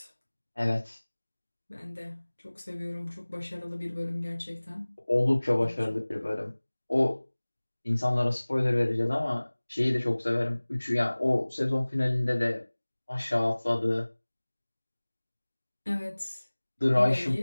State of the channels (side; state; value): both; inverted; correlation -1.00